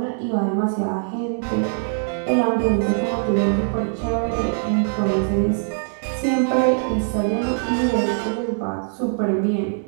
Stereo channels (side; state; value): left; silent; digital silence